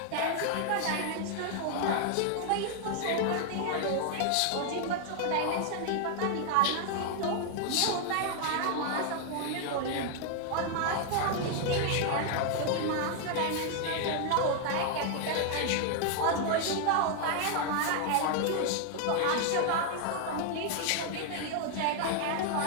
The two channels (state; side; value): different; both; correlation 0.00